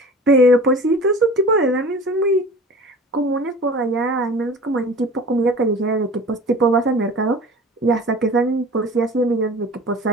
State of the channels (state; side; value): normal; both; correlation 0.40